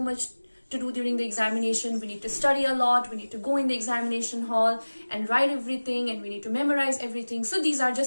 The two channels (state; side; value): inverted; both; correlation -1.00